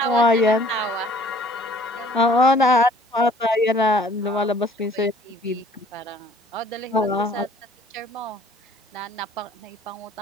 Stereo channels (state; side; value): normal; both; correlation 0.55